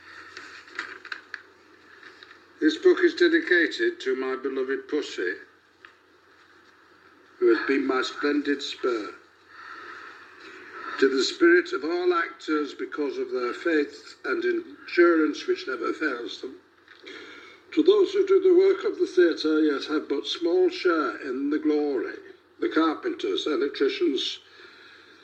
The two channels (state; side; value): identical; both; correlation 1.00